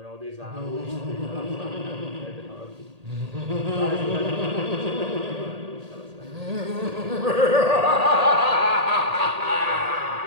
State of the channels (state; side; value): late; left; 1.8 ms